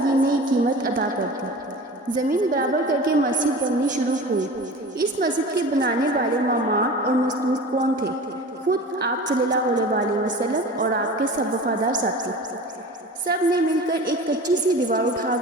یہ نئی قیمت ادا کر دی۔ زمین برابر کر کے مسجد بننی شروع ہوئی۔ اس مسجد کے بنانے والے معمار اور مزدور کون تھے؟ خود آپ صلی اللہ علیہ وآلہ وسلم اور آپ کے سب وفادار ساتھی۔ سب نے مل کر ایک کچی سی دیوار اٹھا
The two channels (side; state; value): both; normal; correlation 0.36